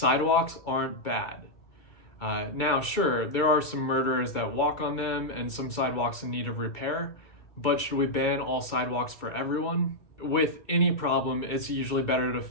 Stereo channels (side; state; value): right; late; 2.2 ms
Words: aren't bad. Now, sure, there are some murderers that walk on them and some sidewalks in need of repair, but should we ban all sidewalks for everyone? With any problem, it's usually better